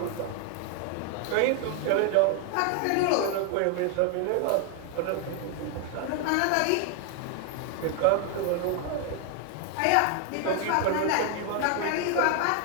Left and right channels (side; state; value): both; different; correlation 0.00